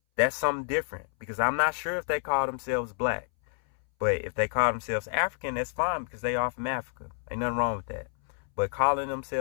that's something different, because I'm not sure if they call themselves black. But if they call themselves African, that's fine, because they are from Africa. Ain't nothing wrong with that. But calling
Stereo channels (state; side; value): silent; right; 59 dB below the other